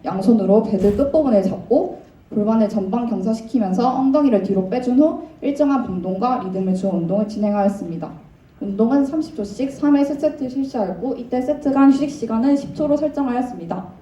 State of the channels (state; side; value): identical; both; correlation 1.00